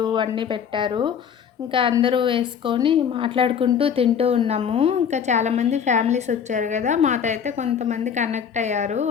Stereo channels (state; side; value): quieter; right; 7.6 dB